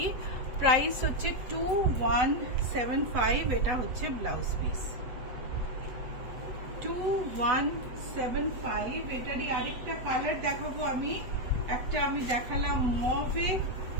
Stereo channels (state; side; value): late; left; 7.7 ms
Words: প্রাইস হচ্ছে 2175। এটা হচ্ছে ব্লাউজ পিস 2175। এটারই আরেকটা কালার দেখাবো আমি। একটা আমি দেখালাম মভে,